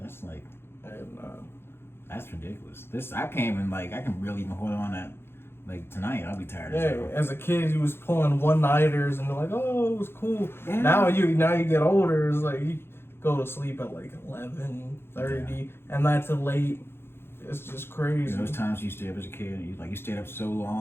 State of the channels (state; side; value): late; right; 0.11 ms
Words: like, that's ridiculous. I can't even I can really even hold on that. Like tonight, I'll be tired. As a kid, you was pulling one-nighters and they're like, oh, it was cool. Yeah. Now you get older, it's like you go to sleep at like 11:30, and that's late. It's just crazy. Those times you stayed up as a kid, you stayed up so